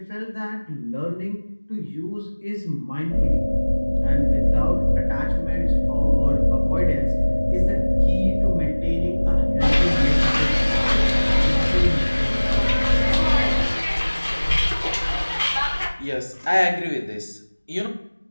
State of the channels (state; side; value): inverted; both; correlation -1.00